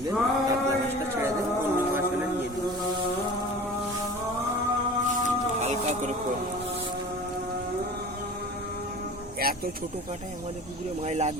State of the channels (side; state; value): both; normal; correlation 0.39